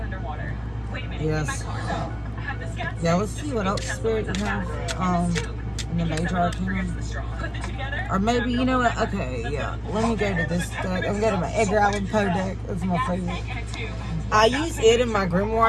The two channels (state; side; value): identical; both; correlation 1.00